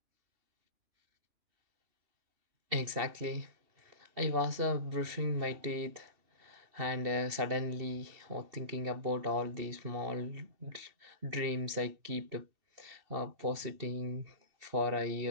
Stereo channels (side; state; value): left; late; 2.7 ms